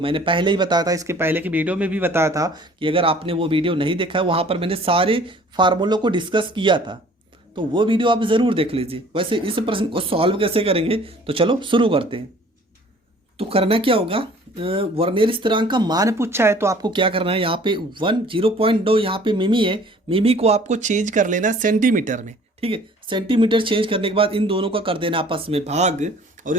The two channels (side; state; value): both; normal; correlation 0.52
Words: पहले ही बताया था, इसके पहले की वीडियो में भी बताया था कि अगर आपने वो वीडियो नहीं देखा है वहाँ पर मैंने सारे फार्मूलों को डिस्कस किया था, तो वो वीडियो आप ज़रूर देख लीजिए। वैसे इस प्रश्न को सॉल्व कैसे करेंगे, तो चलो शुरू करते हैं। तो करना क्या होगा, वर्नियर स्थिरांक का मान पूछा है तो आपको क्या करना है, यहाँ पे 0.2 यहाँ पे मिमी है, मिमी को आपको चेंज कर लेना सेंटीमीटर में, ठीक है। सेंटीमीटर चेंज करने के बाद इन दोनों का कर देना आपस में भाग, और